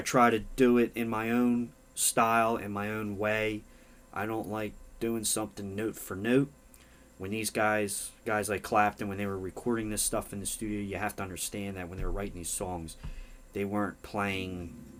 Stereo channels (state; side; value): identical; both; correlation 1.00